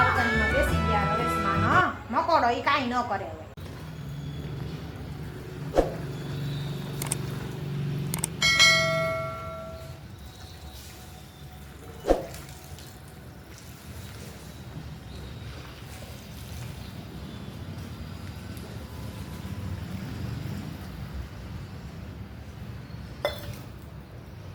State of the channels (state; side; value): identical; both; correlation 1.00